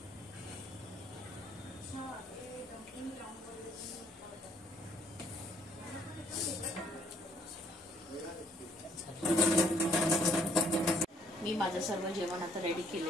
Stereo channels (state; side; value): normal; both; correlation 0.63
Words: मी माझं सर्व जेवण आता रेडी